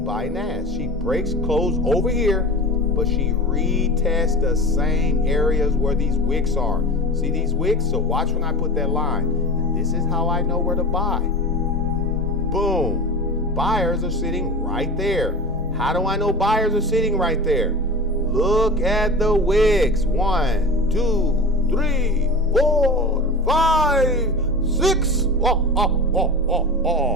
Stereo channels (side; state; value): both; normal; correlation 0.30